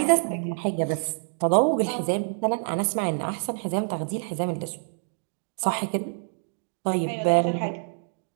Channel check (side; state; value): left; silent; digital silence